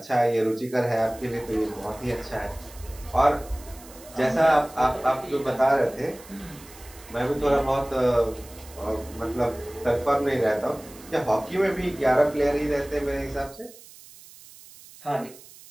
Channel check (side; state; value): right; noise; hiss, 20 dB below the sound